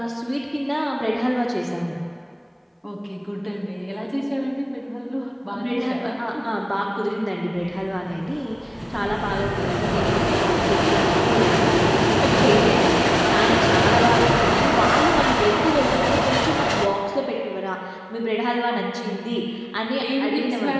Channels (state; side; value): identical; both; correlation 1.00